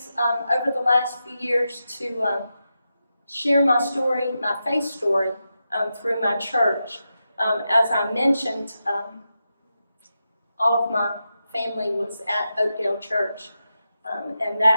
over the last few years to share my story, my faith story, through my church. As I mentioned, all of my family was at Oakdale Church, and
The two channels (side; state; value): both; inverted; correlation -0.88